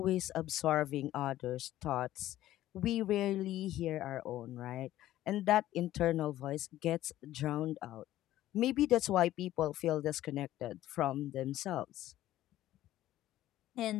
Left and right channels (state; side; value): quieter; right; 14.2 dB